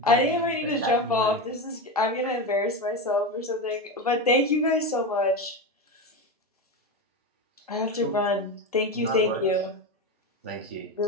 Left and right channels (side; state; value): both; normal; correlation 0.18